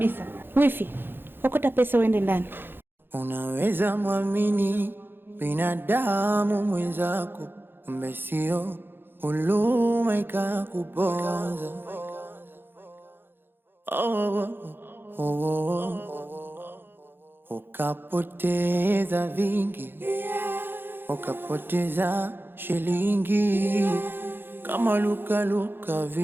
Wifi, okota pesa uende ndani. Unaweza muamini binadamu mwenzako, kumbe sio, huluma ikakuponza. Ukapoteza vingi, ukapoteza shilingi, kama luka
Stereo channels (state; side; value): late; left; 0.10 ms